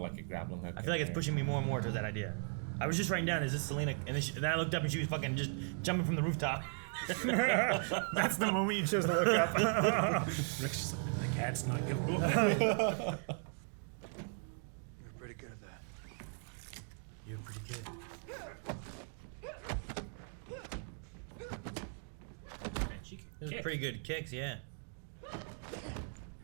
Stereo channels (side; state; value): left; silent; 53 dB below the other